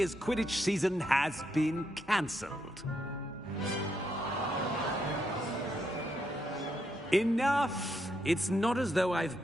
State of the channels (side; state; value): both; normal; correlation 0.78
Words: Quidditch season has been cancelled. Enough! It's not as though I've